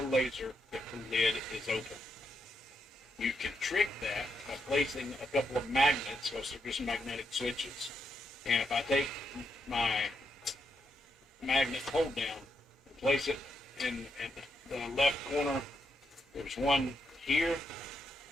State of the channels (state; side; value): normal; both; correlation 0.81